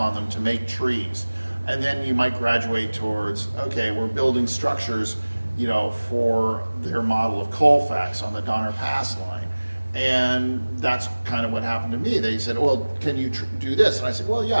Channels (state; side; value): inverted; both; correlation -1.00